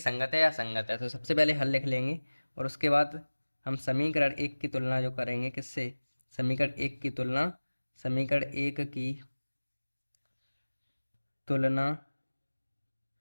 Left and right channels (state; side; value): inverted; both; correlation -1.00